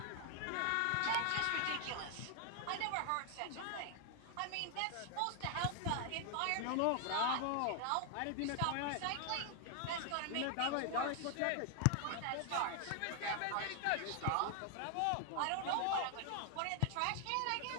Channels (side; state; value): both; different; correlation 0.00